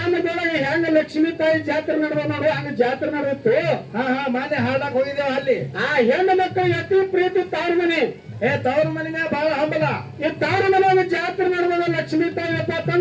ಹೆಂಗ ಲಕ್ಷ್ಮೀ ತಾಯಿ ಜಾತ್ರೆ ನಡೆದ ನೋಡು ಹಂಗ ಜಾತ್ರೆ ನಡೆದಿತ್ತು. ಮಾನ್ಯ ಹಾಡಕ್ ಹೋಗಿದ್ದೇವ ಅಲ್ಲಿ. ಆ ಹೆಣ್ಣು ಮಕ್ಕಳು ಅತಿ ಪ್ರೀತಿ ತವ್ರ ಮನೆ. ತವ್ರ ಮನಿನ ಬಹಳ ಹಂಬಲ. ಈ ತವ್ರ ಮನೆ ಜಾತ್ರೆ ನಡೆದ ಲಕ್ಷ್ಮೀ ತಾಯಿ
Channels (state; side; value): identical; both; correlation 1.00